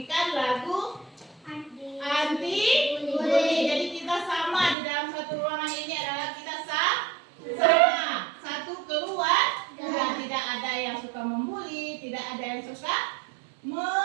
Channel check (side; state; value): left; drops out; at 4.8 s